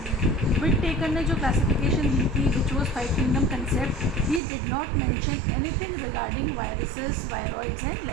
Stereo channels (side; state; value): left; drops out; at 4.4 s